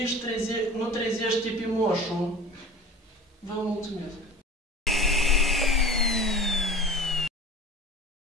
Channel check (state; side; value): normal; both; correlation 0.38